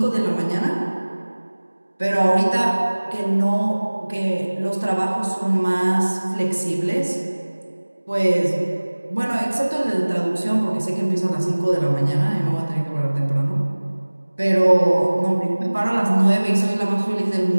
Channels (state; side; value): inverted; both; correlation -1.00